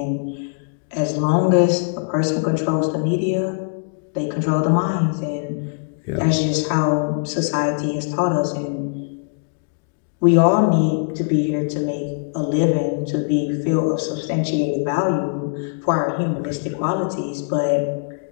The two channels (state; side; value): silent; right; digital silence